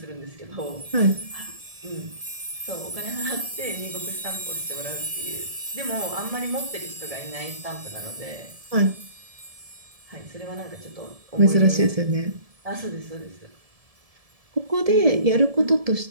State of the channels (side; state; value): left; late; 1.7 ms